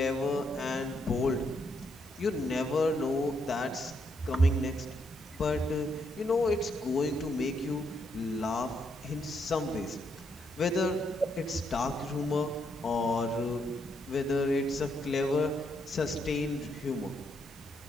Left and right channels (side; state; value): both; normal; correlation 0.77